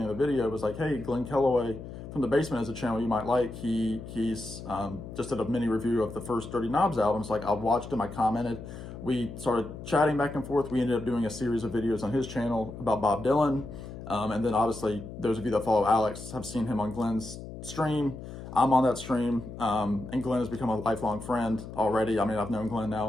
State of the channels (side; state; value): left; noise; hum, 11 dB below the sound